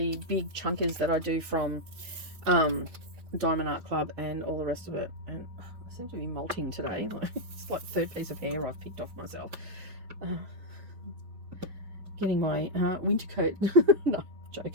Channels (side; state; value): left; late; 4.9 ms